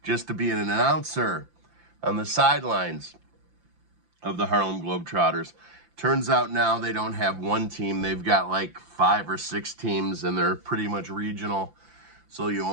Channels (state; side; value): late; left; 5.8 ms